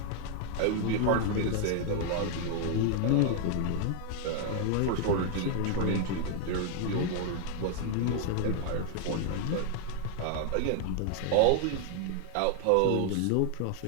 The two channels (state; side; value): different; both; correlation 0.00